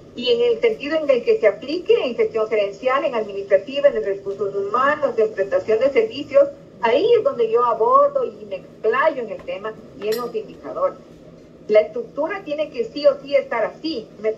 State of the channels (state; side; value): identical; both; correlation 1.00